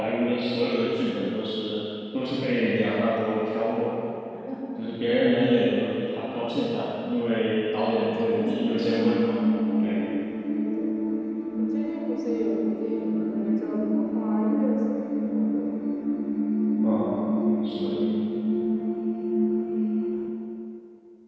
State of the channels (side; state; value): both; identical; correlation 1.00